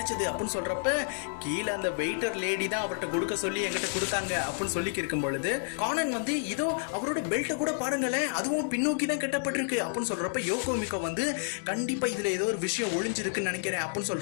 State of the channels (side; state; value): right; silent; digital silence